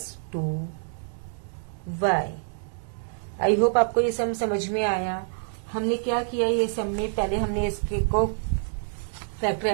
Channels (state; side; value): silent; left; 60 dB below the other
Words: 2y। आई होप आपको ये सम समझ में आया। हमने क्या किया, ये सम में पहले हमने इसके को